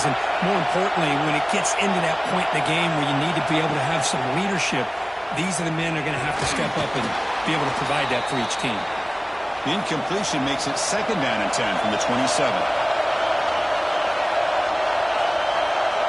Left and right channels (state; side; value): identical; both; correlation 1.00